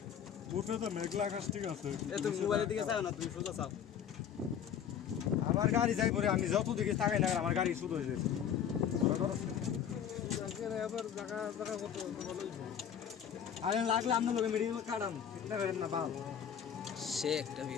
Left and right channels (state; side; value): quieter; right; 8.6 dB